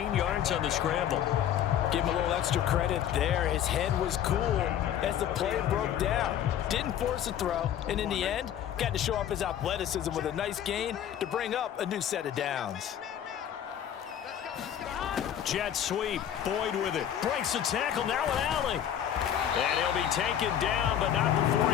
yards on the scramble. Give him a little extra credit there. His head was cool as the play broke down. Didn't force a throw, and in the end, got to show off his athleticism with a nice gain to bring up a new set of downs. Jet sweep. Boyd with it. Breaks the tackle. Now an alley. And he'll be taken down, but not before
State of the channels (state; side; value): quieter; right; 10.1 dB